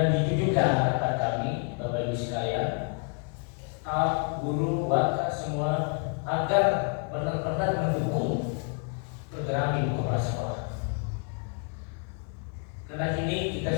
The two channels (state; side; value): quieter; right; 37.6 dB